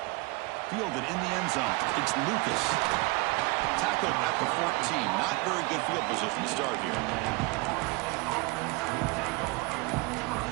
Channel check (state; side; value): quieter; left; 25.1 dB